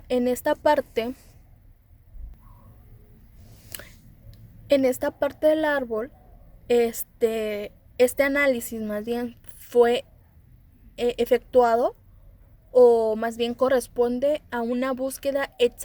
parte del árbol, este análisis más bien fue efectuado, o más bien corresponde a una búsqueda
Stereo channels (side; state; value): both; identical; correlation 1.00